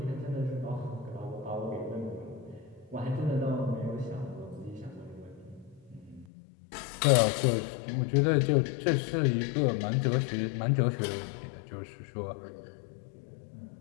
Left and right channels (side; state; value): right; drops out; at 6.2 s